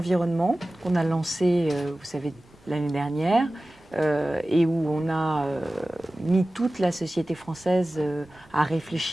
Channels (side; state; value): right; noise; rumble, 28 dB below the sound